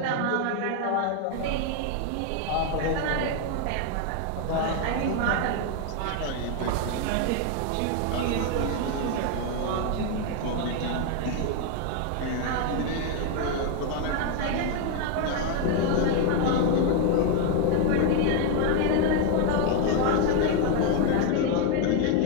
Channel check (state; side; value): different; both; correlation 0.01